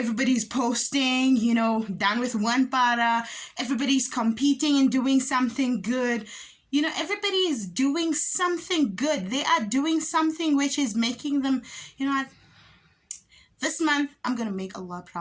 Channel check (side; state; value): both; identical; correlation 1.00